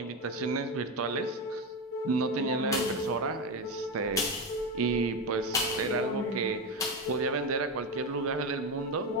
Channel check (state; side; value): normal; both; correlation 0.15